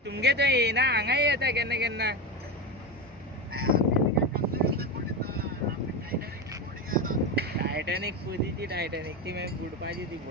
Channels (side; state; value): both; normal; correlation 0.18